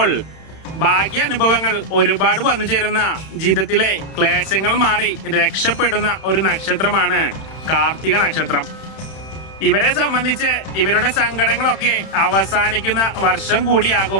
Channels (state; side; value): late; right; 31 ms